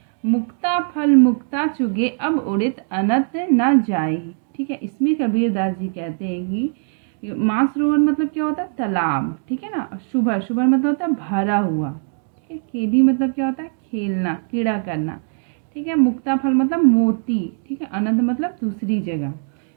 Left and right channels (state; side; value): silent; left; 58 dB below the other